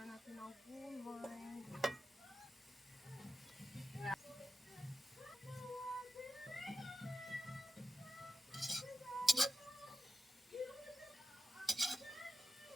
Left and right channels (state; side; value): normal; both; correlation 0.89